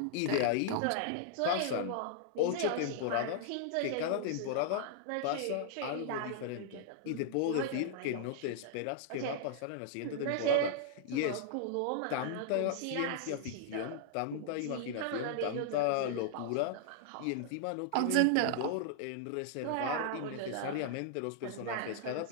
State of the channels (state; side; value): different; both; correlation -0.01